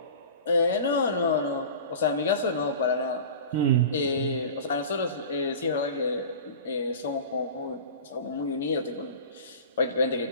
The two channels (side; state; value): both; inverted; correlation -0.36